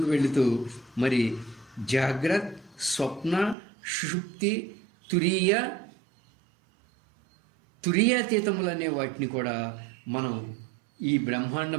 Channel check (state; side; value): drops out; left; at 3.6 s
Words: వెళుతూ మరి జాగ్రత్త, స్వప్న, సుషుప్తి, తురీయాతీతములు అనే వాటిని కూడా మనం ఈ